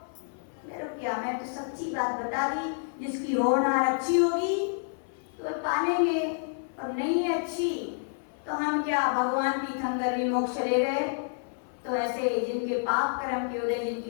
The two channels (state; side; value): silent; right; 59 dB below the other